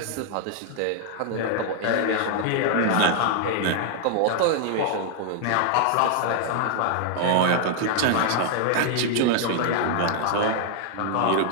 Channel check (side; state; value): both; different; correlation 0.00